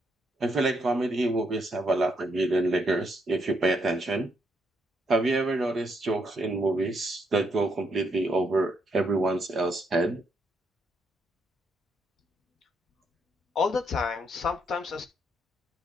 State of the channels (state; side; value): normal; both; correlation 0.76